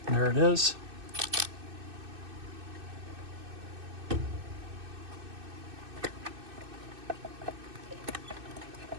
There it is. There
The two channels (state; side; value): late; left; 2.6 ms